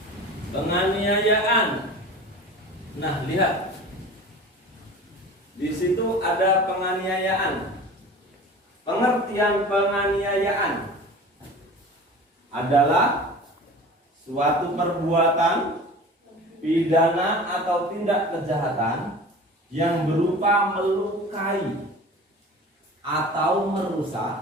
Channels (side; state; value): both; normal; correlation 0.38